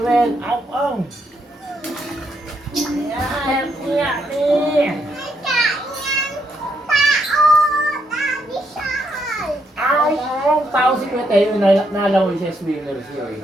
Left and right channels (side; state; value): both; normal; correlation 0.76